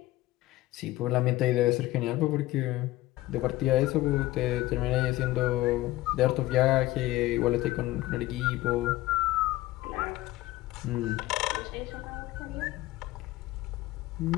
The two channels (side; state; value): right; quieter; 17.0 dB